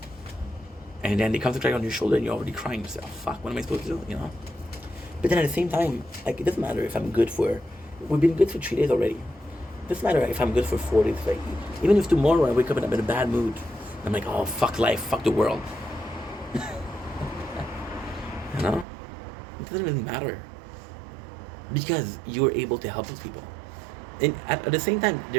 And then they come to cry on your shoulder and you're already crying yourself. Fuck, what am I supposed to do, But then at the same time, like, it doesn't matter if we've been good for 3 days already. It doesn't matter if I'm good for 4 days. Like, even if tomorrow I wake up and I'm in a bad mood, I'm like, oh, fuck life, fuck the world. It doesn't really matter. Because you're able to help those people. And at the same time,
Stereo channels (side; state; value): left; drops out; at 18.9 s